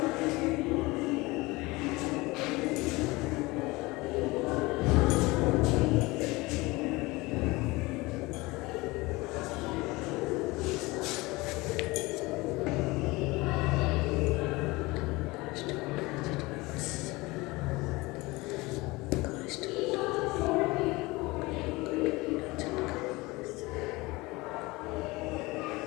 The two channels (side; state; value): right; quieter; 22.4 dB